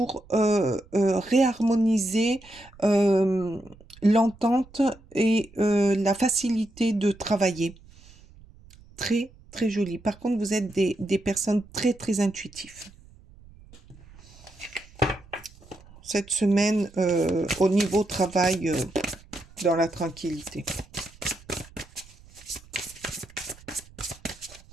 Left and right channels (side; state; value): right; noise; rumble, 24 dB below the sound